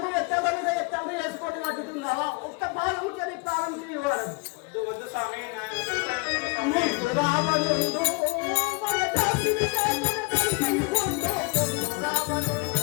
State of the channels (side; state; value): right; quieter; 29.8 dB